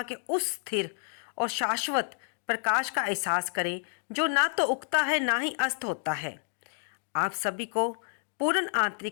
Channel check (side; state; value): right; silent; 58 dB below the other